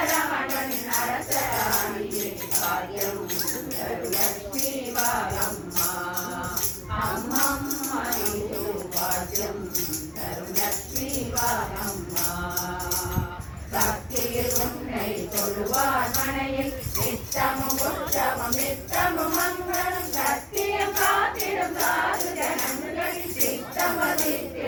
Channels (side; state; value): both; identical; correlation 1.00